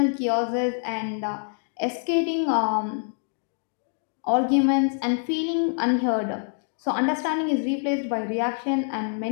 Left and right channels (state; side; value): silent; right; 61 dB below the other